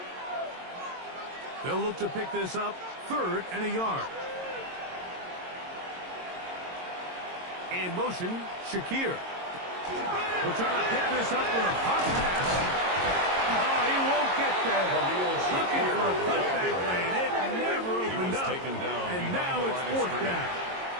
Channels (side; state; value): left; late; 22 ms